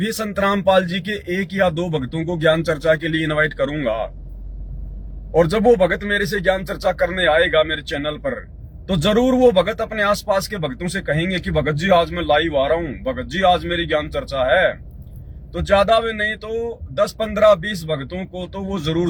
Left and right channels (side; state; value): both; identical; correlation 1.00